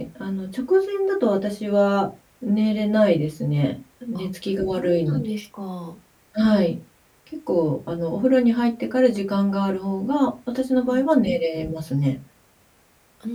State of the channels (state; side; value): identical; both; correlation 1.00